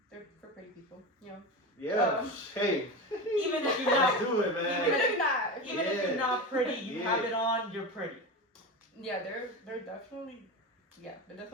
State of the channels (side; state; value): both; normal; correlation 0.24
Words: They're for pretty people, you know. Yeah. Hey. Even if you're not, do it, man. Even if you're not. even if you're not pretty, you have it on. You're pretty. Yeah, they're definitely